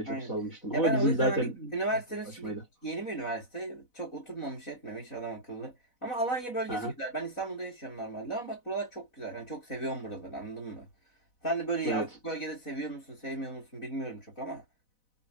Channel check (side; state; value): right; late; 4.0 ms